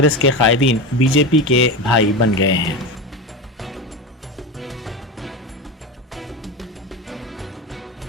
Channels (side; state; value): both; normal; correlation 0.22